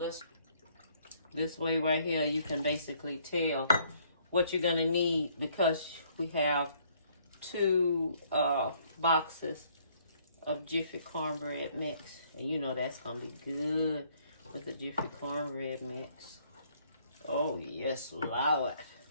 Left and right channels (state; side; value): inverted; both; correlation -0.65